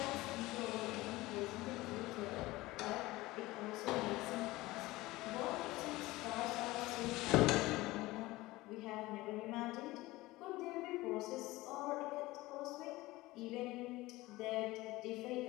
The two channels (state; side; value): quieter; right; 19.3 dB